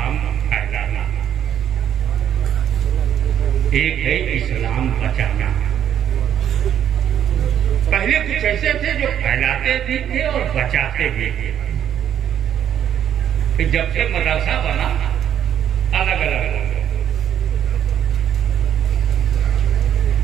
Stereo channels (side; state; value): left; quieter; 9.8 dB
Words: پھیلانا، ایک ہے اسلام بچانا. پہلے کچھ ایسے تھے جو پھیلاتے بھی تھے اور بچاتے بھی تھے. پھر جب سے مدرسہ بنا الگ الگ ہو گئے.